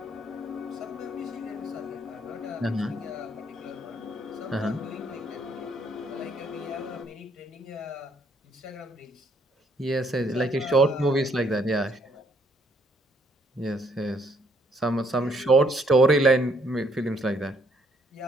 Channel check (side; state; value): both; normal; correlation 0.68